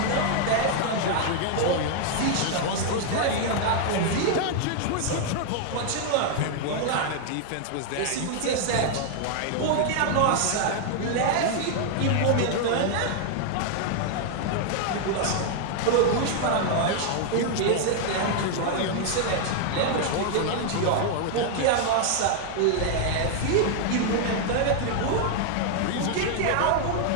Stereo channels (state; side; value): different; both; correlation 0.00